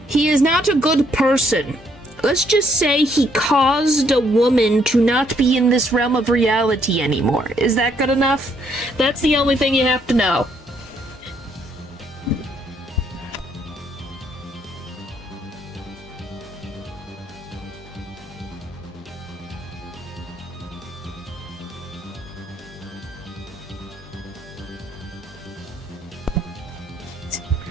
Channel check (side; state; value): both; normal; correlation 0.70